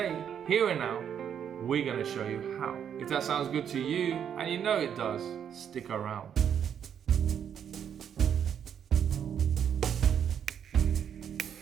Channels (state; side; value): quieter; left; 8.5 dB